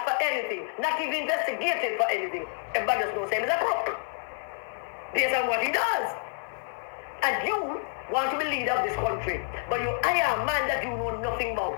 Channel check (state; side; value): silent; right; digital silence